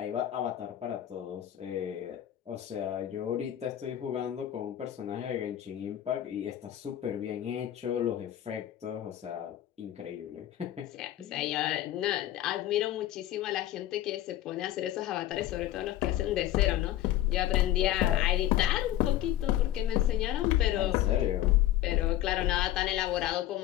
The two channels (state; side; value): quieter; right; 13.2 dB